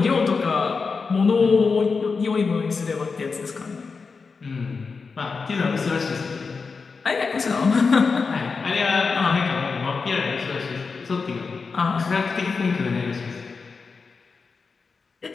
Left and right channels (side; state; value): right; quieter; 4.8 dB